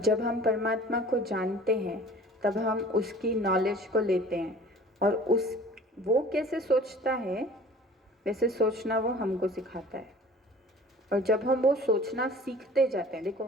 हम परमात्मा को जानते हैं तब हम उसकी नॉलेज को लेते हैं, और वो कैसे सोचता है वैसे सोचना वो हमको सिखाता है। और जब हम वो सोचना सीखते जाते हैं,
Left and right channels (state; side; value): normal; both; correlation 0.46